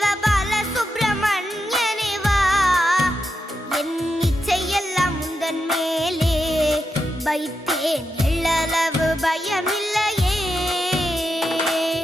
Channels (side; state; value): both; normal; correlation 0.86